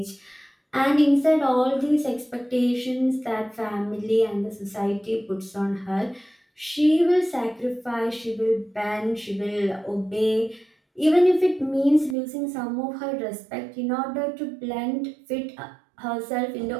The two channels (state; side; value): drops out; left; at 12.2 s